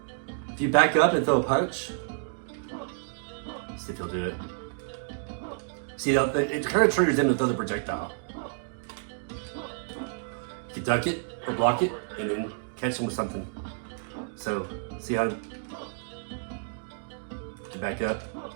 If you back up and throw a punch, see if he'll do it. See, it kind of triggers him to throw the projectile. You duck it or block it and then catch him with something. So, see how to back up.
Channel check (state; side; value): silent; left; digital silence